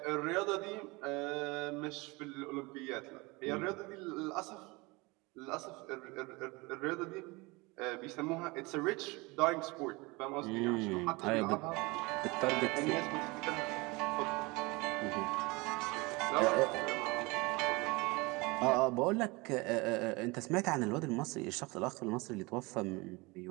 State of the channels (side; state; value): left; quieter; 24.9 dB